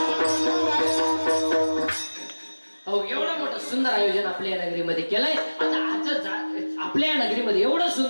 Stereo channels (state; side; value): inverted; both; correlation -1.00